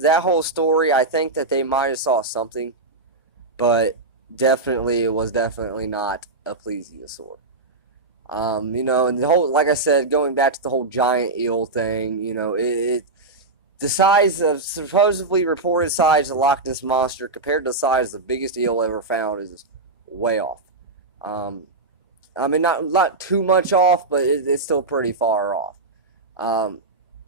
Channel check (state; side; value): quieter; left; 3.3 dB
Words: whole story, I think that they might have saw something, but it was definitely not a plesiosaur. And the whole, like I said, going back to the whole giant eel thing, the size of, supposedly reported size of the Loch Ness Monster compared to the size of the biggest eel ever found is way off. Not too much off, but it's still pretty far off.